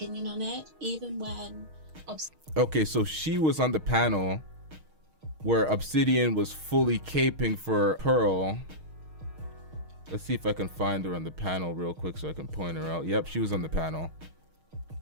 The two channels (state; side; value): late; left; 6.4 ms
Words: on it, even when... Okay, so she was on the panel where Obsidian was fully caping for Pearl. Let's see if I can find her on the panel real quick so I can point her out. Yep, she was on the panel.